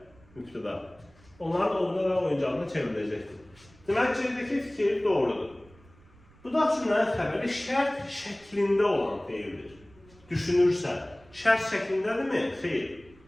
mübtəda, onların ovuna və oyuncağına çevriləcəkdir. Demək, C'dəki fikir doğrudur. Budaq cümlənin xəbəri şərt şəklində olan deyildir. Düşünürsə, şərt şəklindədirmi? Xeyr.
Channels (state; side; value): noise; right; rumble, 27 dB below the sound